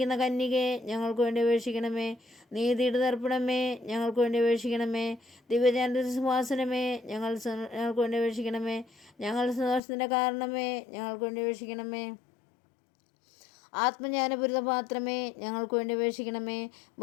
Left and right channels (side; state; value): right; drops out; at 9.8 s